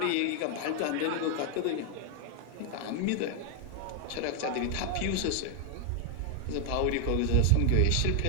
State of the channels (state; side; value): different; both; correlation 0.00